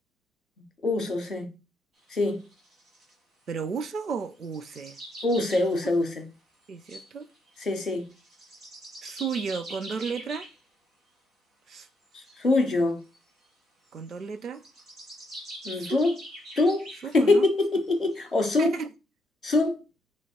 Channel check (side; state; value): both; normal; correlation 0.76